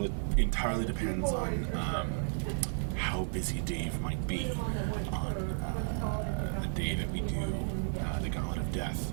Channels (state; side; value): silent; left; 56 dB below the other